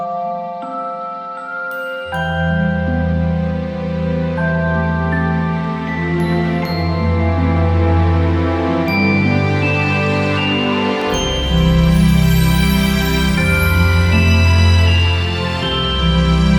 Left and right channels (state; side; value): identical; both; correlation 1.00